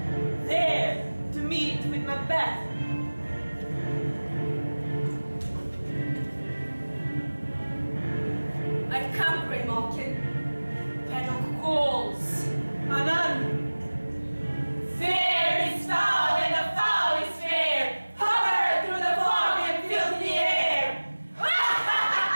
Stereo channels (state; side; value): inverted; both; correlation -1.00